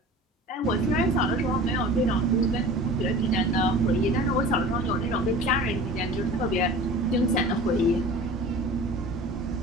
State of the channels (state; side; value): normal; both; correlation 0.40